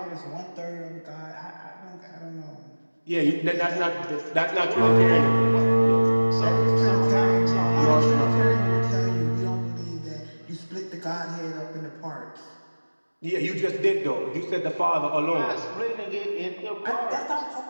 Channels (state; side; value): inverted; both; correlation -1.00